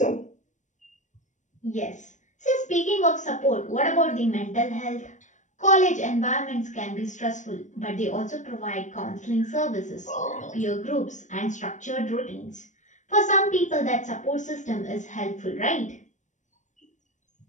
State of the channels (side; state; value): right; late; 0.35 ms